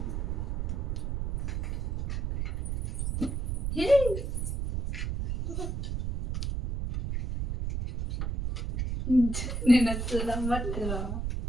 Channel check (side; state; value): right; noise; rumble, 2 dB below the sound